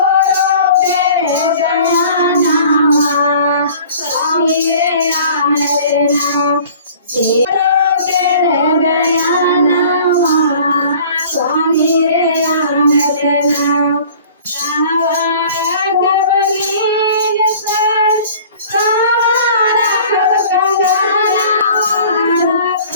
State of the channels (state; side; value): inverted; both; correlation -0.48